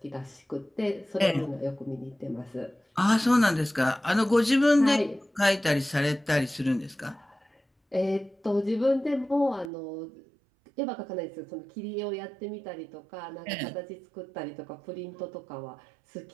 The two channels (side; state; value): left; drops out; at 9.7 s